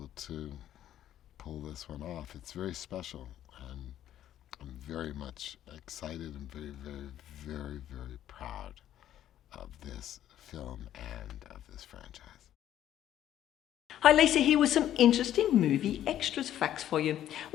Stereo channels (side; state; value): right; quieter; 11.7 dB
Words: to pull this one off. It's very special, and I'm very much excited and very proud of this film and of this franchise. Hi Lisa, here with some interesting movie extras facts for you.